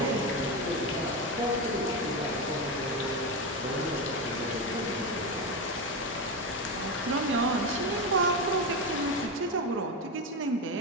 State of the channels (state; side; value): normal; both; correlation 0.14